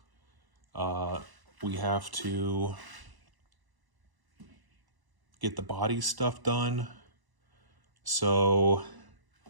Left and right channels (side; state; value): left; late; 1.0 ms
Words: we have to get the body stuff done. So